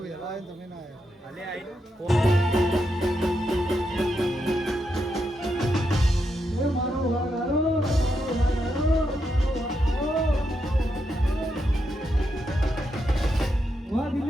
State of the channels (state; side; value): normal; both; correlation 0.83